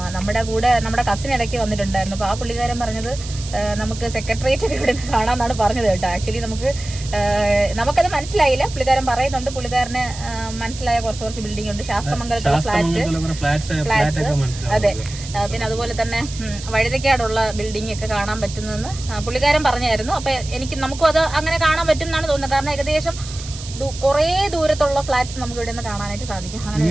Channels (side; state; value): right; noise; hiss, 13 dB below the sound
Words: നമ്മുടെ കസിൻ ഇടയ്ക്ക് വന്നിട്ടുണ്ടായിരുന്നു. അപ്പൊ ആ പുള്ളിക്കാരൻ പറഞ്ഞത് നമുക്ക് സെക്രട്ടേറിയറ്റ് ഒക്കെ ഇവിടെ കാണാന്നാണ് പറഞ്ഞത് കേട്ടോ. ആക്ച്വലി നമുക്കത് മനസ്സിലായില്ല. പുള്ളിക്കാരൻ പറയുന്നുണ്ട്, പുള്ളിക്കാരന് മനസ്സിലായ കുറച്ച് ബിൽഡിംഗ് ഉണ്ട്. ശാസ്ത്രമംഗലത്തുള്ള ഫ്ലാറ്റ്സ്, അതെ. പിന്നെ അതുപോലെ തന്നെ വഴുതക്കാടുള്ള ബിൽഡിംഗ് ഒക്കെ കാണാൻ പറ്റുന്നതെന്ന് പുള്ളിക്കാരൻ പറഞ്ഞായിരുന്നു. അപ്പൊ നമുക്കും അത് അങ്ങനെ കാണാൻ പറ്റും എന്നാണ് തോന്നുന്നത്. കാരണം ഏകദേശം കുറേ ദൂരത്തുള്ള ഫ്ലാറ്റ്സ് നമുക്ക് ഇവിടെ നിന്ന് കാണാനായിട്ട് സാധിക്കും.